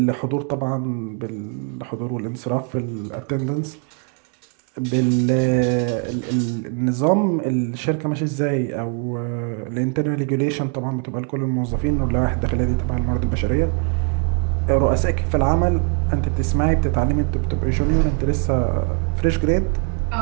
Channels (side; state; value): left; quieter; 39.2 dB